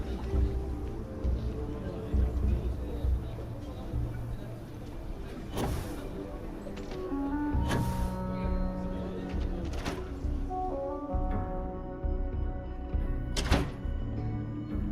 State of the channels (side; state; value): both; identical; correlation 1.00